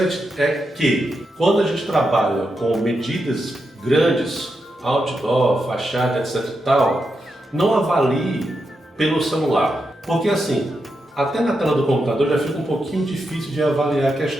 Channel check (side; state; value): both; normal; correlation 0.85